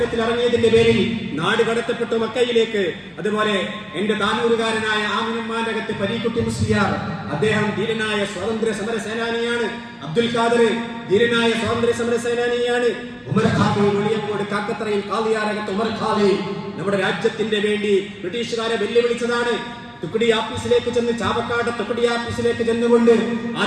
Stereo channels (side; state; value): both; identical; correlation 1.00